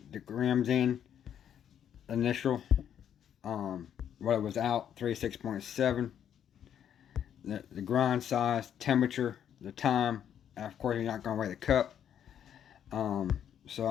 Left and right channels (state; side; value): quieter; right; 9.4 dB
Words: grams in. Initial, what it was out, 36.7. The grind size, temperature, the time, and of course you're not going to weigh the cup. So